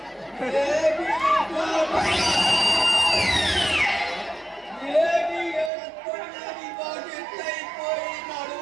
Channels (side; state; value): left; drops out; at 5.7 s